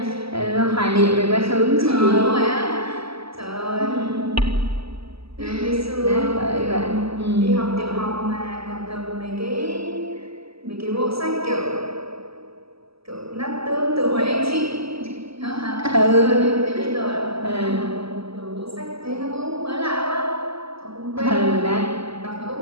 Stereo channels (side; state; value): left; late; 0.76 ms